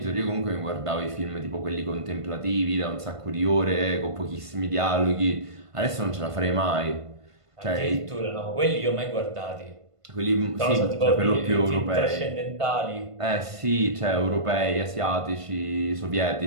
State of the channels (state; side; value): late; left; 1.5 ms